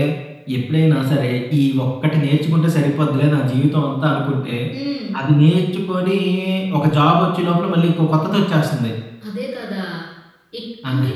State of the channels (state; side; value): identical; both; correlation 1.00